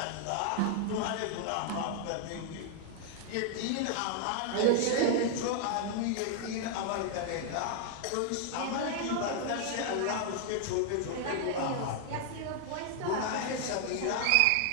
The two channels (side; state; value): both; different; correlation 0.00